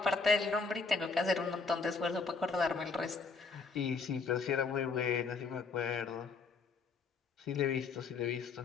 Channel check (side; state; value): right; quieter; 4.6 dB